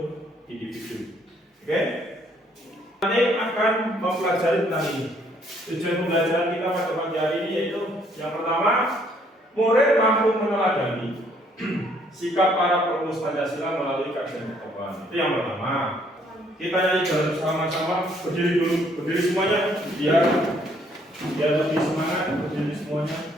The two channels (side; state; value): both; normal; correlation 0.66